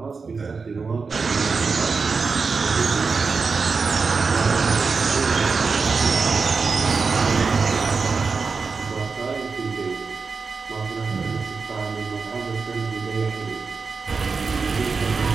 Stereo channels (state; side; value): quieter; left; 4.8 dB